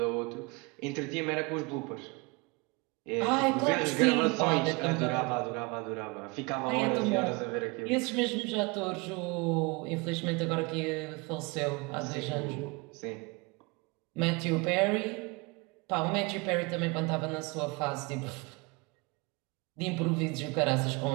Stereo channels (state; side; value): quieter; left; 27.2 dB